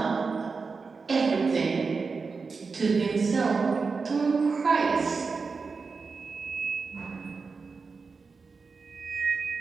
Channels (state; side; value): quieter; left; 4.7 dB